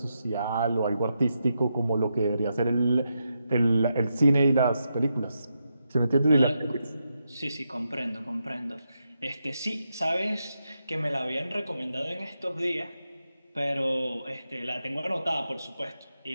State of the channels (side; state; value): both; inverted; correlation -0.85